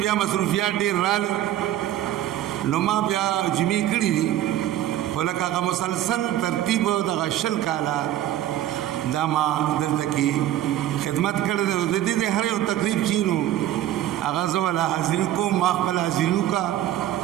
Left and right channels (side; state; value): left; quieter; 12.7 dB